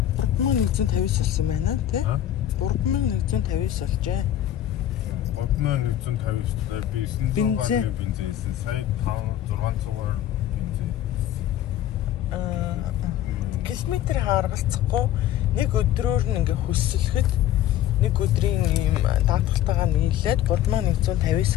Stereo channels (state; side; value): quieter; right; 12.0 dB